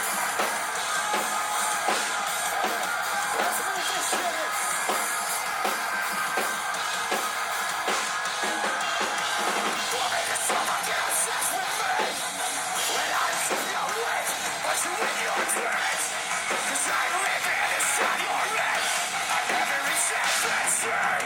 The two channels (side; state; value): both; identical; correlation 1.00